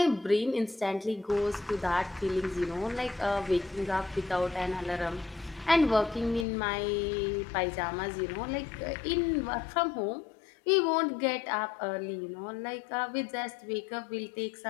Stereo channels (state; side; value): drops out; right; at 6.5 s